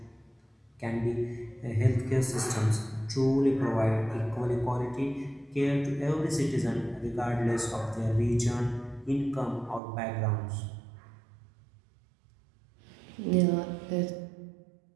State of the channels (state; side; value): drops out; left; at 9.8 s